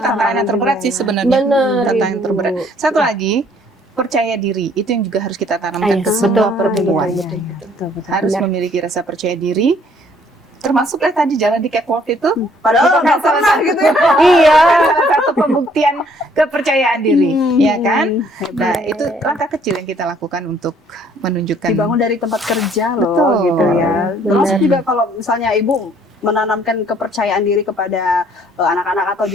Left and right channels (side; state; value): both; normal; correlation 0.62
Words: yang terberat sih sebenarnya. Bener, tantangan yang Ibu. terberat. Satu lagi, percaya diri. Itu yang juga harus kita tanamkan ke semua perempuan. Betul. Harus memiliki rasa percaya diri. Termasuklah tadi jalan di catwalk itu. Padahal nggak pernah gitu ya. Iya. Salah satu pembuktian kepercayaan diri, ya kan? Nah itu langkah kecil yang kita lakukan untuk menunjukkan. Dibangun dari tempat kerja loh, Betul. gitu ya. Termasuk juga kalau misalnya Ibu menanamkan kepercayaan diri kepada anak-anak atau